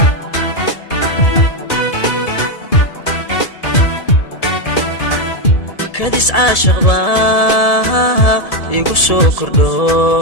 kadis aashaq igu soo kordho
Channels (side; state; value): right; late; 1.7 ms